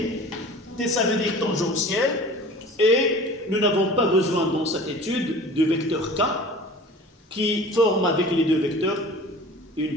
ça veut dire tangentiel, et nous n'avons pas besoin dans cette étude de vecteur K qui forme avec les deux vecteurs une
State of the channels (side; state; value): both; normal; correlation 0.42